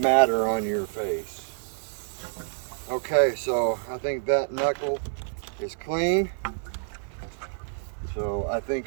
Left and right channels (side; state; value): left; silent; digital silence